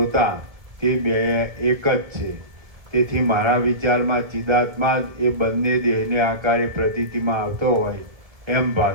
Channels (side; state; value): left; late; 1.7 ms